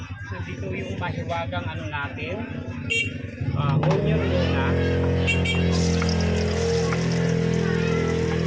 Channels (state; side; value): identical; both; correlation 1.00